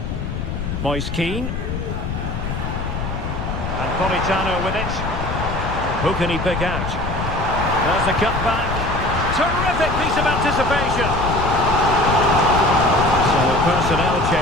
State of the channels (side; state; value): left; noise; rumble, 5 dB below the sound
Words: Moise Keane. And Politano with it. Who can he pick out? There's the cut back. Terrific piece of anticipation. So a personnel